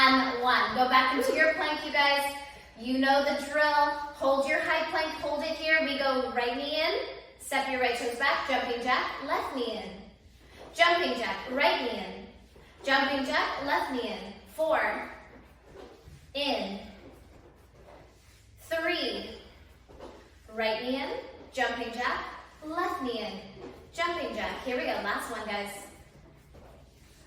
1. Go back into your plank, you guys. You know the drill. Hold your high plank. Hold it here. We go right knee in. Step your right toes back. Jumping jack. Left knee in. Jumping jack. Right knee in. Jumping jack, left knee in. 4, in. 3, right knee in, jumping jack, left knee in, jumping jack. Here we go, last one, guys.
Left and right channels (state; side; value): identical; both; correlation 1.00